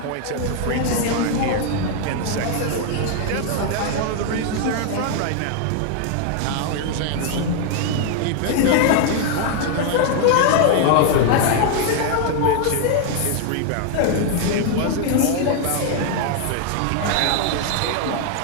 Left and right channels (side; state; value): both; different; correlation 0.00